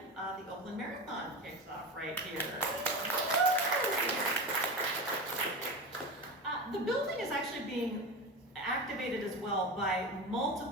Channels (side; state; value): both; normal; correlation 0.25